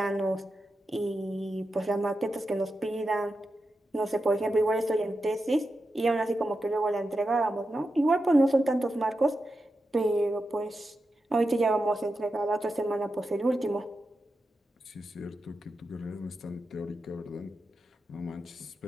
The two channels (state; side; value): normal; both; correlation 0.89